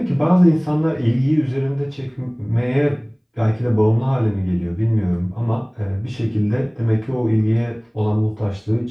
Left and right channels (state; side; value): identical; both; correlation 1.00